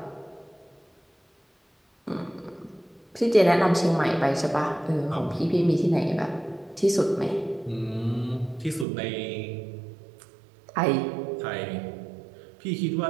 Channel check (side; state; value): left; drops out; at 8.8 s